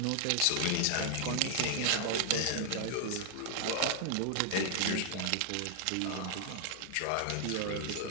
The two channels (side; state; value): both; different; correlation 0.00